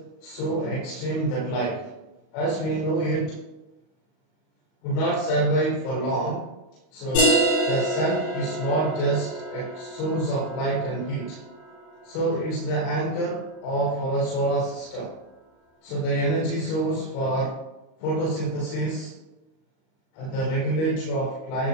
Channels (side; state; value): right; late; 38 ms